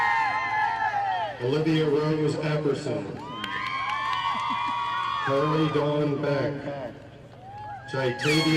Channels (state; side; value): identical; both; correlation 1.00